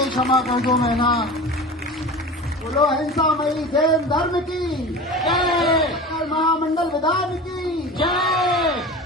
क्षमा कर दो मैना। बोलो अहिंसामयी जैन धर्म की जय, महामंडल विधान की जय।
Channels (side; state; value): both; normal; correlation 0.33